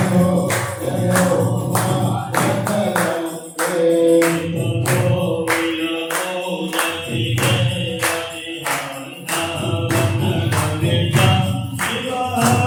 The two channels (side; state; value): both; identical; correlation 1.00